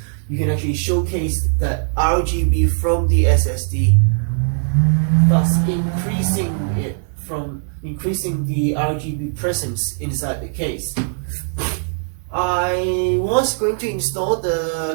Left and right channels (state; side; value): silent; left; digital silence